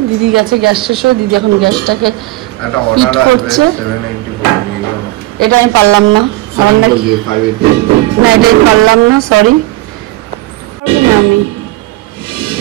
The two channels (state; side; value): quieter; left; 18.4 dB